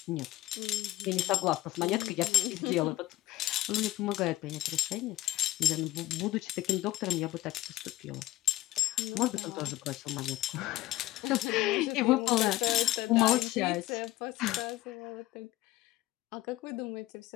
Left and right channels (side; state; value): right; quieter; 16.3 dB